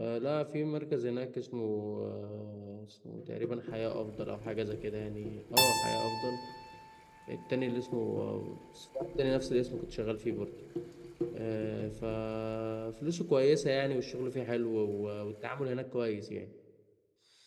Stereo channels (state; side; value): identical; both; correlation 1.00